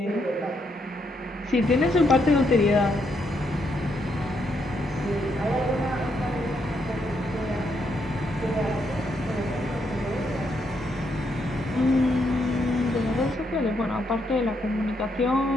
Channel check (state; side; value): normal; both; correlation 0.77